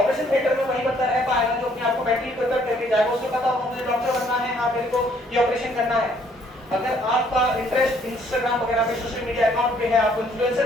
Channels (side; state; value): both; normal; correlation 0.64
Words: थिएटर में वही बंदा रह पाएगा जो अपने आप को मेंटली प्रिपेयर करके जाएगा, उसको पता होगा मुझे डॉक्टर बनना है, हाँ मेरे को ये ऑपरेशन करना है। अगर आपका इंटरेस्ट इंस्टाग्राम वगैरह पे, सोशल मीडिया अकाउंट पे है, आपको इन्फ्लुएंसर